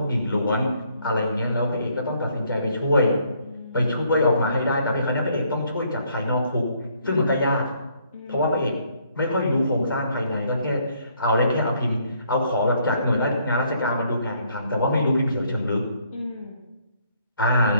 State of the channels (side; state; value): both; inverted; correlation -0.68